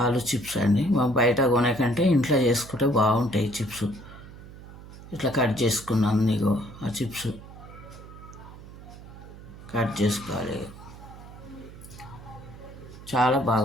ఆలు చిప్స్ అండి మనం బయట కొనేకంటే ఇంట్లో చేసుకుంటే బాగుంటాయి చిప్స్. ఇట్లా కట్ చేసుకున్నాను నీకు ఆ చిప్స్ కట్ చేసుకోవాలి. చాలా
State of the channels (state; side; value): noise; right; hum, 16 dB below the sound